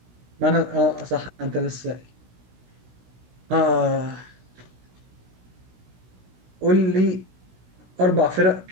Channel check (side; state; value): left; late; 16 ms